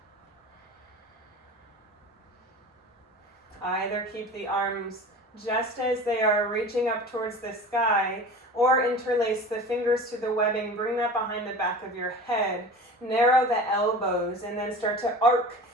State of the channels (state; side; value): normal; both; correlation 0.37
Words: Either keep the arms just as they are reaching up towards the sky, or interlace the fingers to the webbing, bring that behind the back of your head, narrow the elbows, and then start to arc